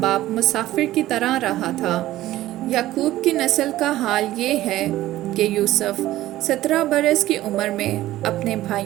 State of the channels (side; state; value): left; quieter; 15.2 dB